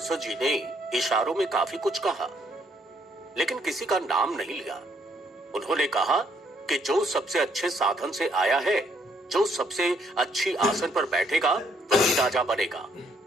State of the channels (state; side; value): normal; both; correlation 0.69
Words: जी ने इशारों में काफी कुछ कहा, लेकिन किसी का नाम नहीं लिया। उन्होंने कहा कि जो सबसे अच्छे साधन से आया है, जो सबसे अच्छी आसन पर बैठेगा वही राजा बनेगा।